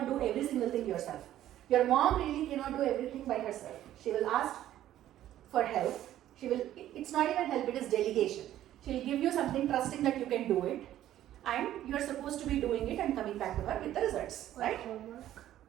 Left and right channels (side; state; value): left; quieter; 12.7 dB